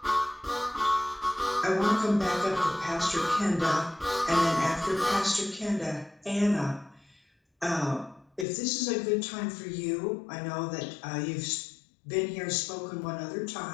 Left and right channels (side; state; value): right; drops out; at 8.5 s